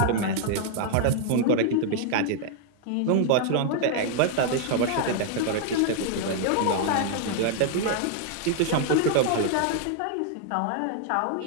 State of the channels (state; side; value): different; both; correlation -0.01